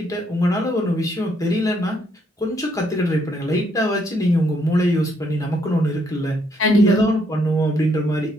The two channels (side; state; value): both; normal; correlation 0.72